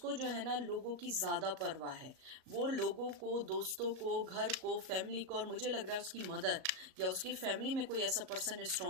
जो है ना लोगों की ज़्यादा परवाह है। वो लोगों को, दोस्तों को, घर को, फैमिली को, और मुझे लग रहा है उसकी मदर या उसकी फैमिली में कोई ऐसा पर्सन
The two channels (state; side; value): late; left; 38 ms